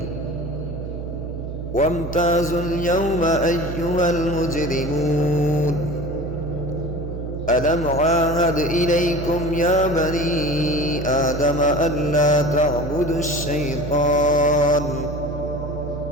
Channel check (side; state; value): right; noise; hum, 7 dB below the sound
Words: وامتازوا اليوم أيها المجرمون ألم عاهد إليكم يا بني آدم ألا تعبدوا الشيطان